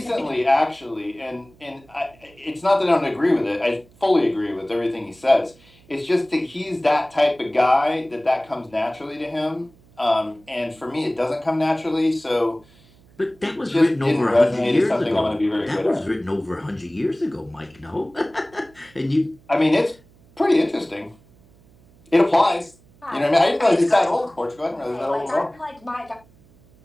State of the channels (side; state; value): right; noise; hum, 29 dB below the sound